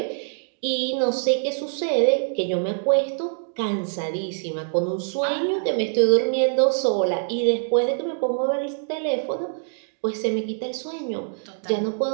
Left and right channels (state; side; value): silent; left; digital silence